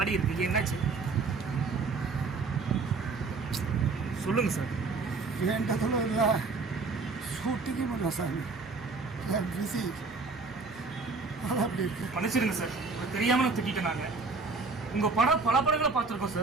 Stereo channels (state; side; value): quieter; left; 4.2 dB